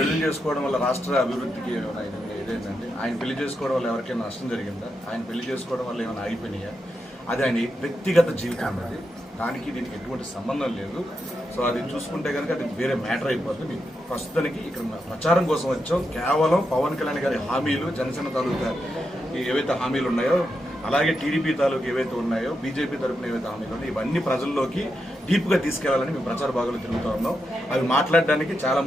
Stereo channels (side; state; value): both; normal; correlation 0.85